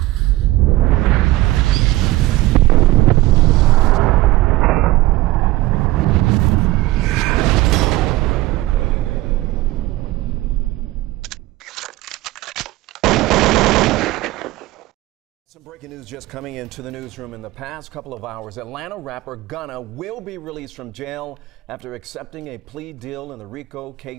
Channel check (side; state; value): left; quieter; 18.0 dB